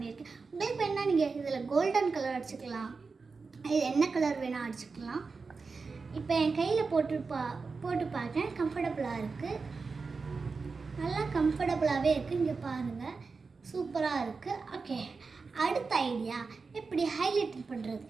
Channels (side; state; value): left; quieter; 4.5 dB